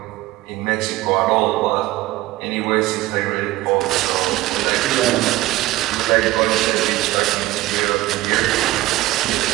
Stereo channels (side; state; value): left; quieter; 17.1 dB